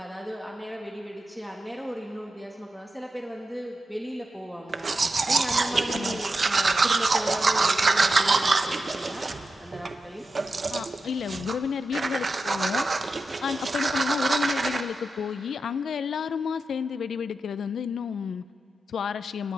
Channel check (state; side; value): normal; both; correlation 0.89